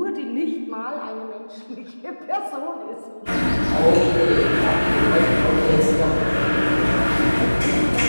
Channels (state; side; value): inverted; both; correlation -1.00